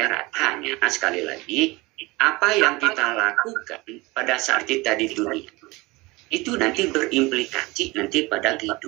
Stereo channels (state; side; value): quieter; left; 22.8 dB